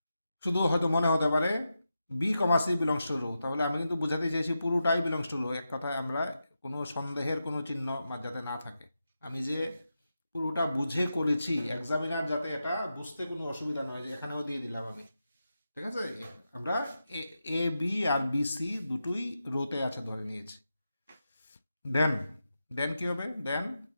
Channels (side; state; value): both; inverted; correlation -0.89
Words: শুধু হয়তো মনে হতে পারে b comma C belongs to rho, তাহলে আমি কিন্তু বুঝাতে চাইছি পুরোটাই বিলংস টু রো, এক কথায় আমরা কোনো সন্দেহের কোনো চিহ্ন যাতে না থাকে, আমি যে পুরোটা বুঝে করেছি এক্সামিনার যাতে এটা বুঝতে কোনো অসুবিধা নয়, যে এখানেও দিয়ে দিলাম আমি, ঠিক আছে। আমরা A B R B C দুটোই রোতে আছে ধরে নিয়েছি। দেন দেন কি হবে, দেন